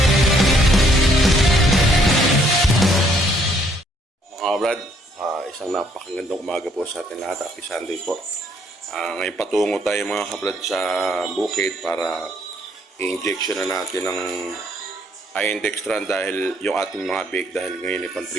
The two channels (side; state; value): both; normal; correlation 0.67